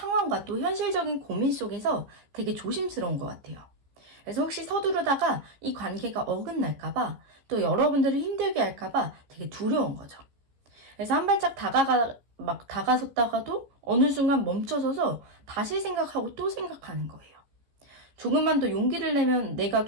또 현실적인 고민 속에서 되게 조심스러운 것 같아요. 그래서 혹시 서두르다가 이 관계가 어긋날까봐, 또 여러분들을 힘들게 할까봐 되게 두려운 거죠. 그래서 한 발짝 다가섰다가도 어느 순간 멈춰서서 다시 생각하고 또 생각하는 거예요. 조금만 더 용기를 내면, 내가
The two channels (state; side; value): late; left; 15 ms